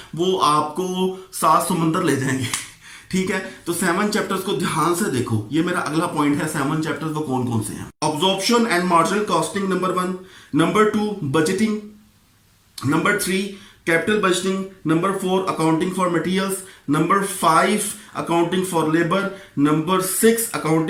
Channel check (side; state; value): both; identical; correlation 1.00